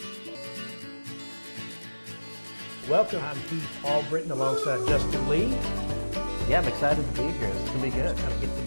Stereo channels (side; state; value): both; inverted; correlation -1.00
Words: Welcome. I'm Heath Albritton alongside Justin Lee. Yeah, I'm excited to be here. It's going to be good. Kind of get to